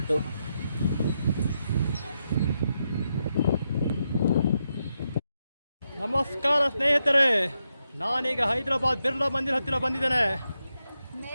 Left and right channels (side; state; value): both; inverted; correlation -0.84